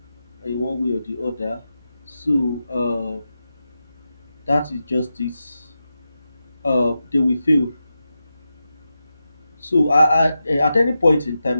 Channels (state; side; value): inverted; both; correlation -0.90